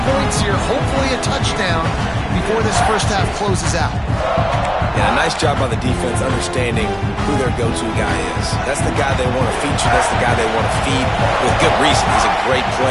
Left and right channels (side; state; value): both; identical; correlation 1.00